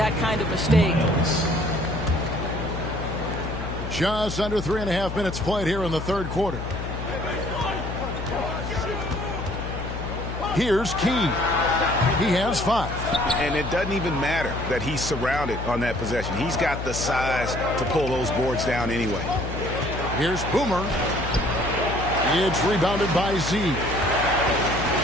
kind of mistake. Just under 3.5 minutes played here in the third quarter. Here's Key. He has 5. And it doesn't even matter that he's surrounded on that possession. He's got the size to pull those boards down anyway. Here's Boomer. It's rebounded by Z.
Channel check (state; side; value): noise; left; hum, 6 dB below the sound